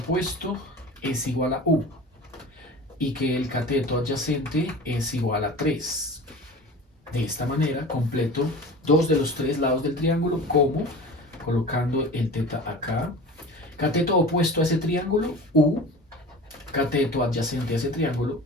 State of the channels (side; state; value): both; normal; correlation 0.36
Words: es igual a U y que el cateto adyacente es igual a 3. De esta manera completo dos de los tres lados del triángulo, como colocando el teta acá. Cateto opuesto a ese triángulo, U. Cateto adyacente a ese triángulo,